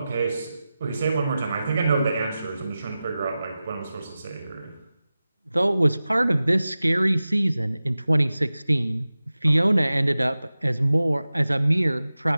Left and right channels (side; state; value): both; inverted; correlation -0.95